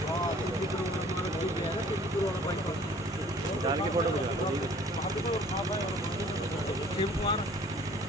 डाल के फोटो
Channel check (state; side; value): normal; both; correlation 0.53